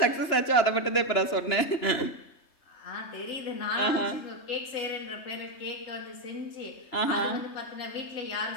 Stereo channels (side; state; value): right; late; 2.9 ms